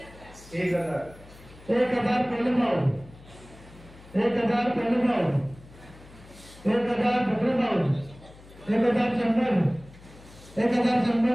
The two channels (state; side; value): noise; left; hum, 21 dB below the sound